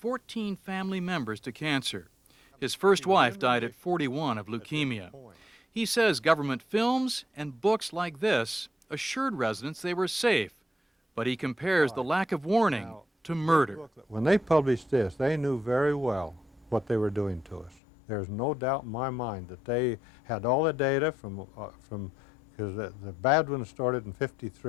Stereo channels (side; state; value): right; drops out; at 17.8 s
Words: family members to cancer. His first wife died at 41 of leukemia. He says government films and books like this assured residents they were safe, but he compares the lack of warning to murder. When they published this, they knew very well what they were doing to us. There's no doubt in my mind that they had all the data from because the bad one started in